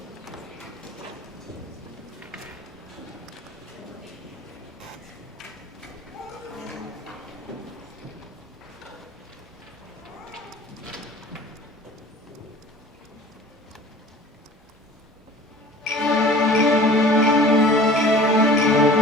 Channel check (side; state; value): both; normal; correlation 0.44